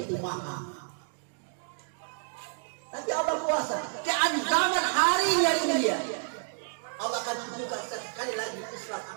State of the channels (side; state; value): left; silent; digital silence